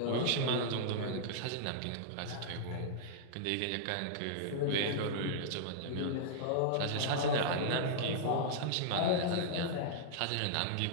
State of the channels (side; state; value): both; different; correlation -0.01